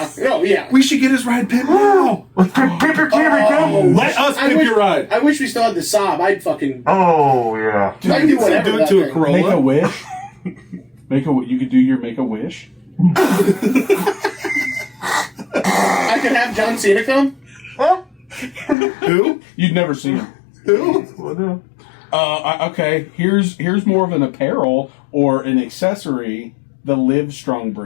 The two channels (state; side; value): drops out; right; at 18.8 s